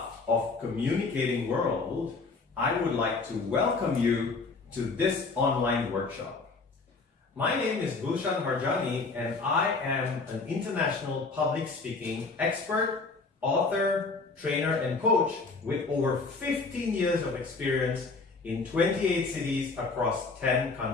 of Communicating World, I would like to welcome you to this online workshop. My name is Gulshan Harjani and I am an international public speaking expert, author, trainer and coach with over 15 years of experience in 28 cities across 10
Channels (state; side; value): quieter; right; 4.0 dB